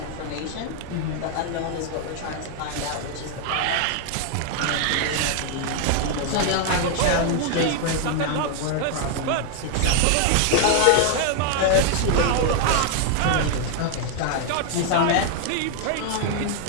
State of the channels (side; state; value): both; different; correlation 0.00